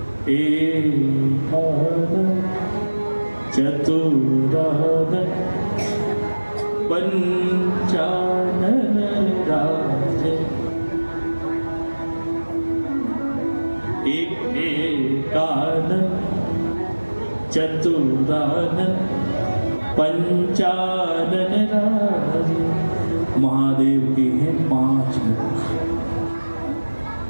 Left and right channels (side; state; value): both; inverted; correlation -1.00